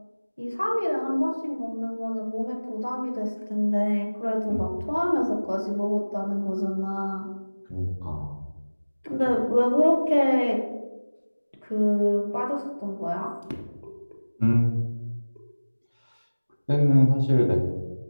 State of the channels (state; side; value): inverted; both; correlation -1.00